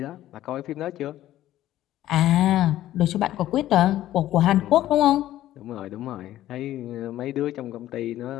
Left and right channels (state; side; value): quieter; right; 13.7 dB